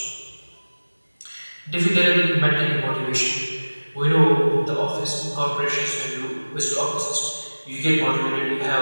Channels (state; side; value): inverted; both; correlation -1.00